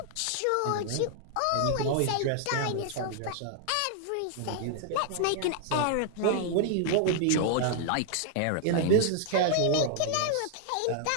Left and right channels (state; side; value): different; both; correlation 0.00